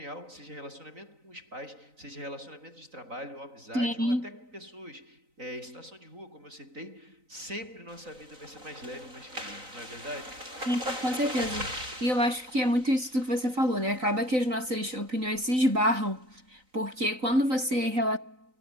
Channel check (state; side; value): late; left; 3.9 ms